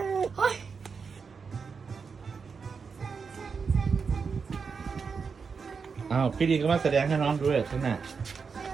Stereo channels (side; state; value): left; quieter; 5.5 dB